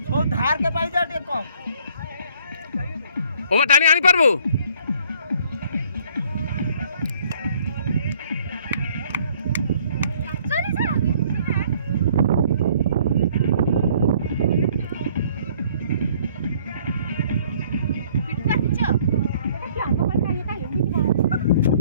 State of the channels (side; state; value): both; inverted; correlation -0.59